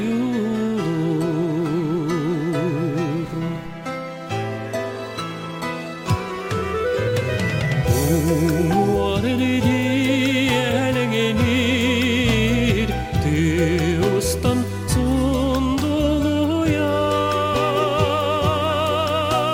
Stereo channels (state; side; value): identical; both; correlation 1.00